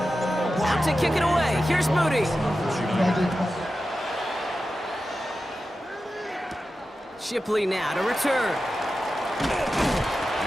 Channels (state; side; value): normal; both; correlation 0.92